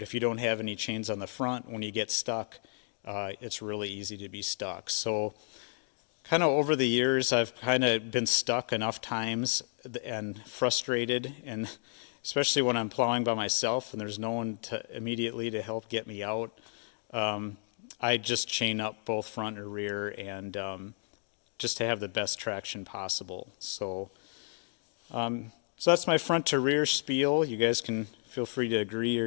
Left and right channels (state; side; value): silent; right; 56 dB below the other